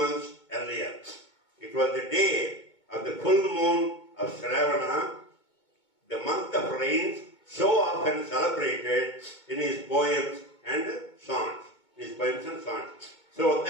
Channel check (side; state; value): right; late; 2.2 ms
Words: earlier. It was the day of the full moon of Shravana, the month of rains, so often celebrated in his poems and songs. So